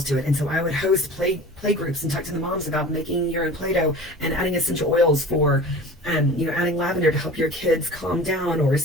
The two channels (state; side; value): normal; both; correlation 0.39